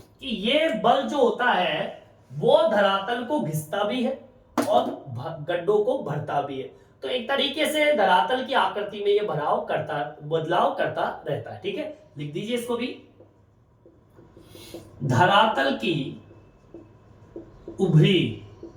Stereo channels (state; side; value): identical; both; correlation 1.00